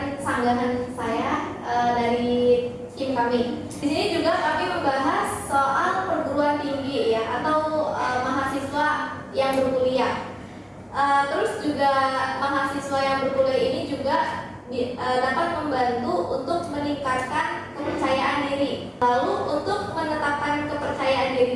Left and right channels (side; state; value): both; identical; correlation 1.00